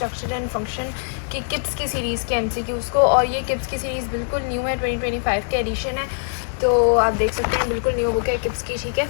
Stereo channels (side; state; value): right; silent; 64 dB below the other